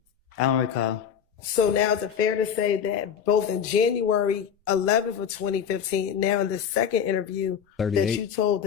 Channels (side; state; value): right; quieter; 7.8 dB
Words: I don't recall. So now is it fair to say that both in January 11th of 2015, now in the second interview, 38. that you told